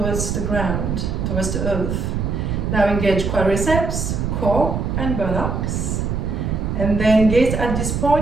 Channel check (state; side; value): noise; right; rumble, 1 dB below the sound